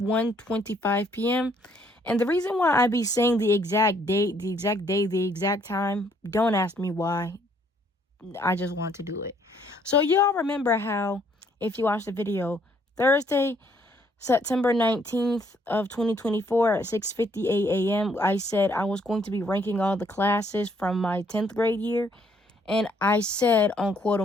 p.m. And the reason why I be saying the exact date, the exact day, the exact time, don't ask me why. I just want to do it. So y'all remember how, if you watched the video, Thursday, September 19th of 2024 at 6:58 a.m., I said I was going to be ranking all the classes from my 10th grade year. And I said on quote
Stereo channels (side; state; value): both; normal; correlation 0.67